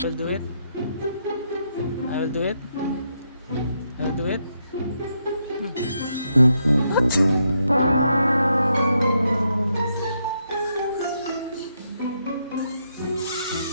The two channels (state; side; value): inverted; both; correlation -0.79